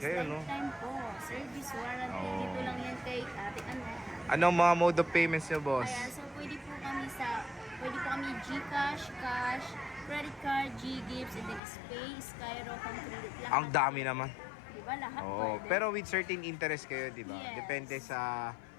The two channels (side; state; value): right; drops out; at 11.6 s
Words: kayo, no? lifetime po. Service warranty. Oo. Dito lang yan kay Ate Annette. Anong mga mode of payments nyo, boss? Ayan, so pwede po kami GCash, cash, credit card, G-Gifts, and then Spay, Skyro, Concredit. Lahat. Ang dami naman. Di ba? Lahat Oo, pwede. pero with certain interest kayo, di ba? Yes. Depende sa